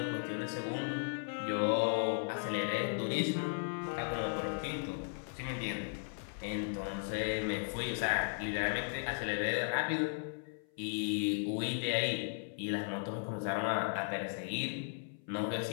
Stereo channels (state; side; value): silent; right; 54 dB below the other